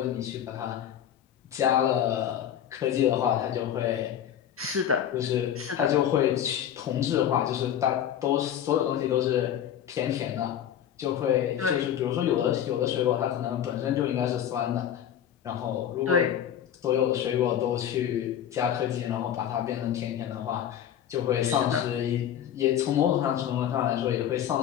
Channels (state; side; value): quieter; right; 10.0 dB